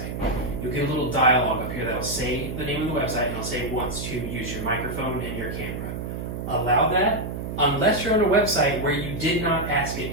you'll get a little dialog up here that'll say the name of the website, and it'll say wants to use your microphone and your camera. Allow that, unless you're on a website where you did not ask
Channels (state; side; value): noise; right; hum, 6 dB below the sound